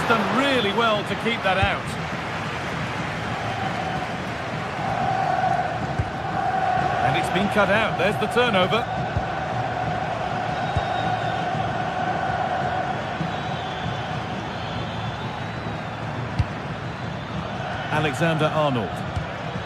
done really well to keep that out. And it's been cut out. There's the turnover. Alexander-Arnold.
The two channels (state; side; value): identical; both; correlation 1.00